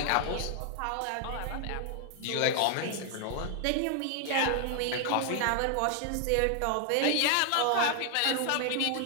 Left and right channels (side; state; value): both; different; correlation 0.00